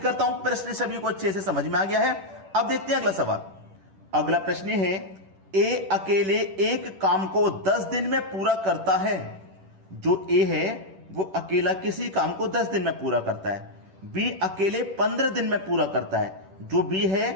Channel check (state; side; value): late; left; 10 ms